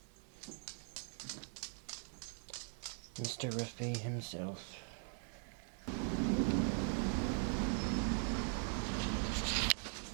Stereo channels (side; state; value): left; silent; 50 dB below the other